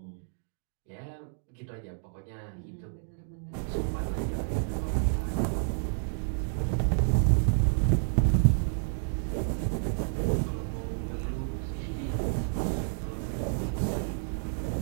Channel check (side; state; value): left; silent; digital silence